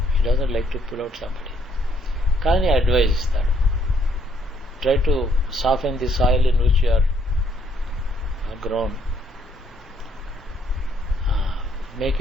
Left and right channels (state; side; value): normal; both; correlation 0.69